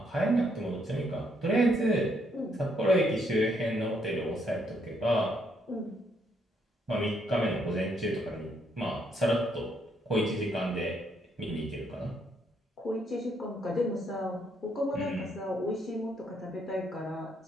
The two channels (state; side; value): normal; both; correlation 0.73